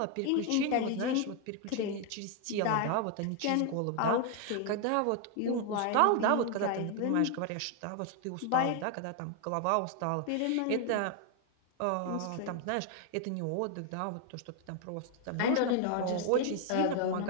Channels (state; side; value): different; both; correlation 0.01